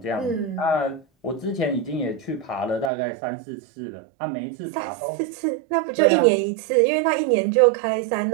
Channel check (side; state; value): left; drops out; at 2.9 s